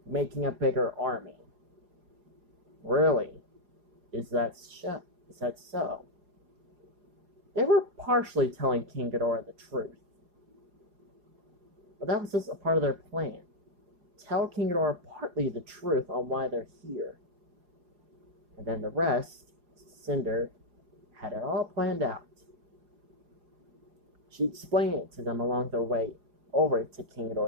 making a bigger army. Really? Is that so? They were partially telling King Ghidorah the truth. But that was just a part of their plan. Tell King Ghidorah partly the truth on why they're here. And then the rest, Cinder had it all planned out. She explained it to them along their way over to King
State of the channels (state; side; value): late; left; 4.9 ms